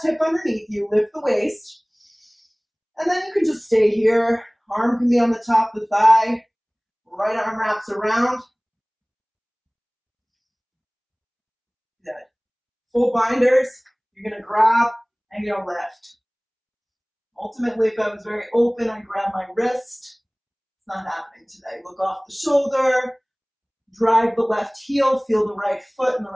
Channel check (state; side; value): identical; both; correlation 1.00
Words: hip underneath you, lift the waist. And then you can just stay here. Arm can be on the top of the thigh. Right arm wraps around. Good. Full binders. You're going to grab and you're going to lift. Ultimately, if I was very open, I'd grab my wrist. It's not happening today. Look off the shoulder. Drive the left heel. Feel the right foot and the